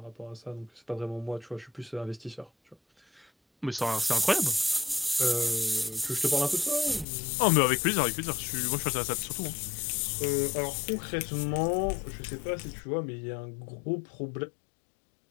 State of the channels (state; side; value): drops out; right; at 7.1 s